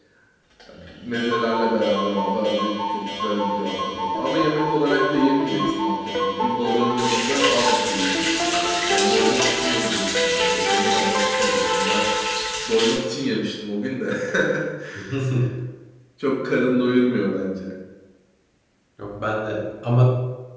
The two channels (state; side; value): identical; both; correlation 1.00